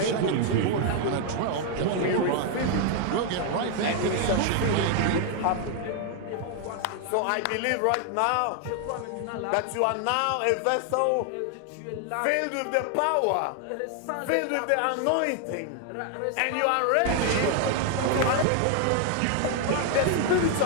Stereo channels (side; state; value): both; different; correlation 0.00